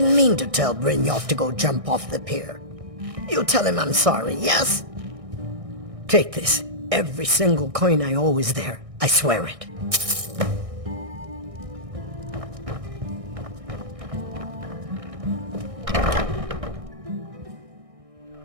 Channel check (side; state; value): left; late; 1.6 ms